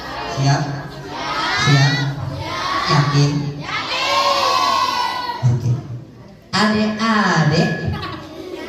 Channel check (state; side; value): identical; both; correlation 1.00